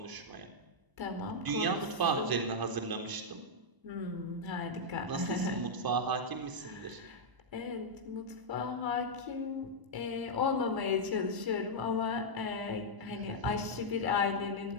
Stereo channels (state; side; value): late; left; 1.0 ms